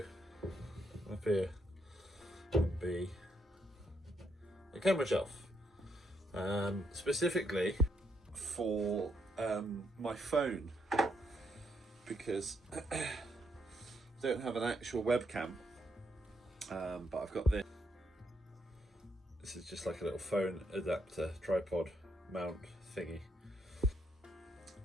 up here and be a camera shelf. Specifically for my phone, because I don't have an actual webcam, but I've got this. This is just like a little phone adapter, tripod mount thingy.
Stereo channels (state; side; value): normal; both; correlation 0.76